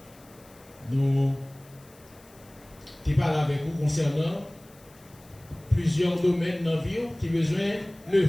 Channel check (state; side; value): noise; left; hiss, 26 dB below the sound